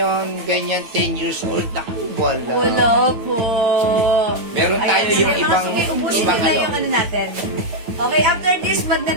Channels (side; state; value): left; late; 9.0 ms